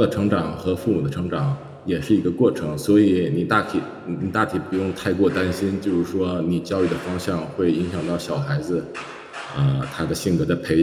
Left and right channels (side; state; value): both; identical; correlation 1.00